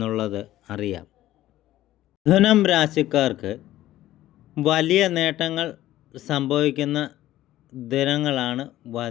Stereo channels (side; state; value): right; quieter; 14.5 dB